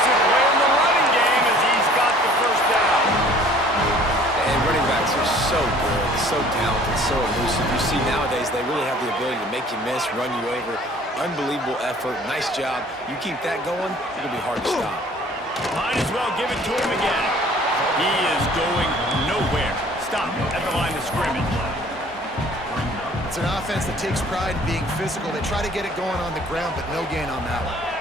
play in the running game as he's got the first down. And running backs are so good, so talented, so elusive. You see nowadays they really have the ability to make you miss, run you over. Unbelievable effort. Nice job. You keep that going, it'll be hard to stop. Might as well give it to him again. He is going nowhere. Stop at the line of scrimmage. It's an offense that takes pride in being physical. They try to get it going on the ground, but no gain on that one.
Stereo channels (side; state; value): both; normal; correlation 0.53